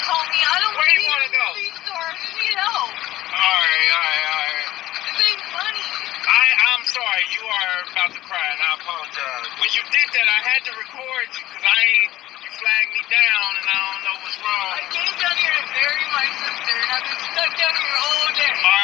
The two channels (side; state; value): right; quieter; 15.6 dB